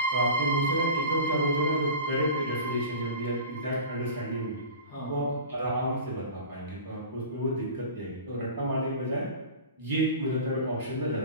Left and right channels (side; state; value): both; inverted; correlation -0.35